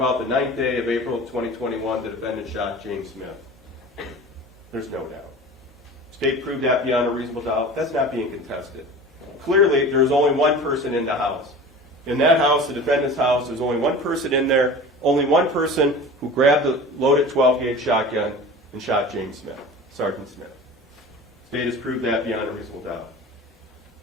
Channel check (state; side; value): normal; both; correlation 0.36